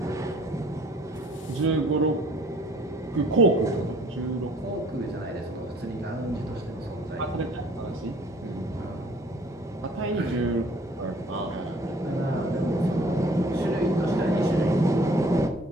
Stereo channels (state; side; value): normal; both; correlation 0.55